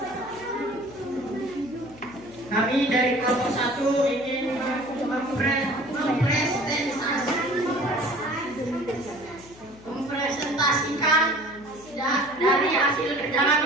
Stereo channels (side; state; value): left; noise; hum, 22 dB below the sound